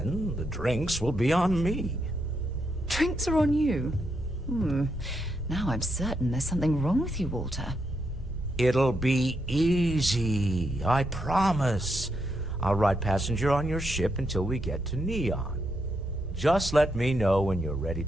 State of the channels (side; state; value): both; normal; correlation 0.81